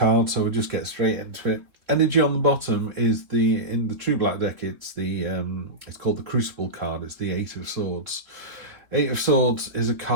so we'll just get straight into it. Energy on the bottom is in the True Black deck, it's called the Crucible card, it's the Eight of Swords. Eight of Swords is a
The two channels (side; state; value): left; late; 3.1 ms